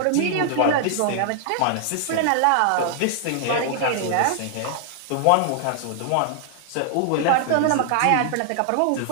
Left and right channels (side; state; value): both; different; correlation 0.00